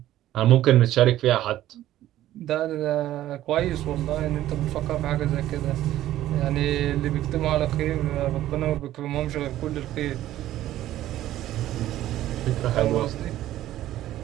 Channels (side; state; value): left; quieter; 13.7 dB